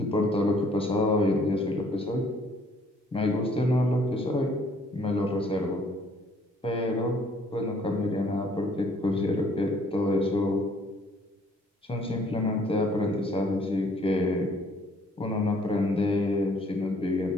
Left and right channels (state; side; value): normal; both; correlation 0.61